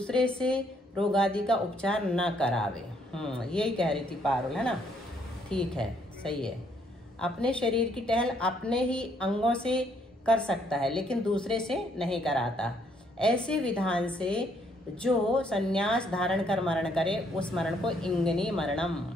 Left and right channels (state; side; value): normal; both; correlation 0.69